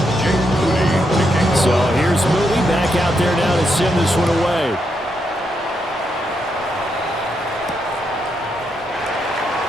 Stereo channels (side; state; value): both; normal; correlation 0.81